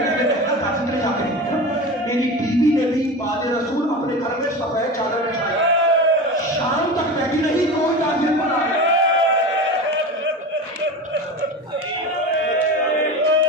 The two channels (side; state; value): both; normal; correlation 0.28